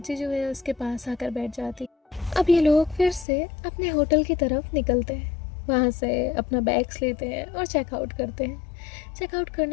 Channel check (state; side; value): drops out; right; at 3.2 s